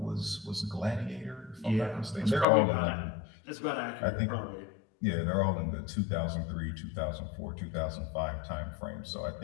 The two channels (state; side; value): drops out; right; at 2.5 s